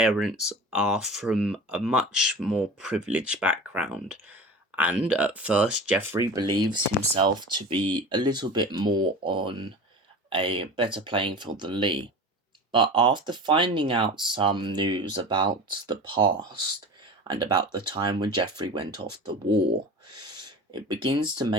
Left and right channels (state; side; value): normal; both; correlation 0.34